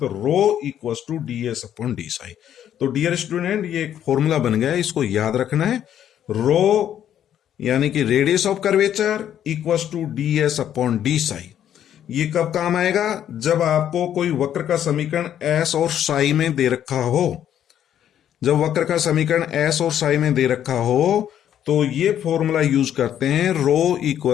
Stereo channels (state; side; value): quieter; right; 10.3 dB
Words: rho equals to ds upon D psi. तो डियर स्टूडेंट, ये एक फॉर्मूला बन गया है, इसको याद रखना है। रो यानी कि radius of curvature equals to ds upon D psi. ये कब काम आएगा? जब आपको कोई वक्र का समीकरण S और साई में दे रखा हो। जब वक्र का समीकरण S और साई में दे रखा हो तो ये फॉर्मूला यूज करते हैं, rho